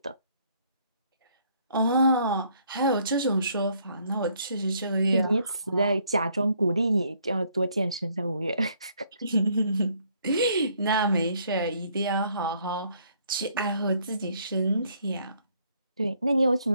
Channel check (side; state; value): both; inverted; correlation -0.67